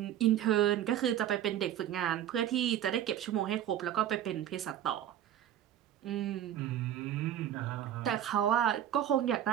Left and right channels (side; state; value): left; quieter; 11.0 dB